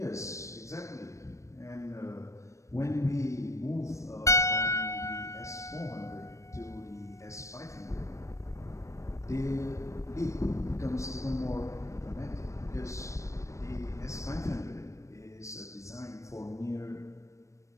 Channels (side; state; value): right; late; 0.15 ms